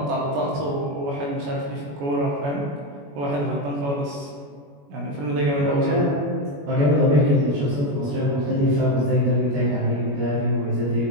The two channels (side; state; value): left; late; 21 ms